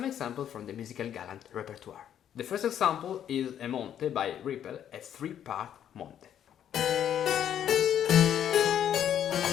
examples from the musical Galant repertoire. The first example is a Monte by Rippel, a 3-part Monte.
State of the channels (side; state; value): right; quieter; 9.9 dB